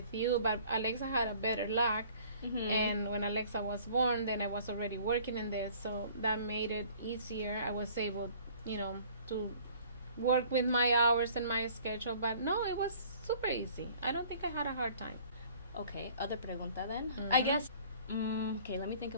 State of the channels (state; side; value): inverted; both; correlation -0.53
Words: you, but Alexa had a better luck. And when Alexa was born, then I was already working in there, so that made it easier. I was able, to work with my hours and my schedule, but no, it was super easy. I don't think I had a hard time. Okay, other pregunta then. I guess, okay, let me think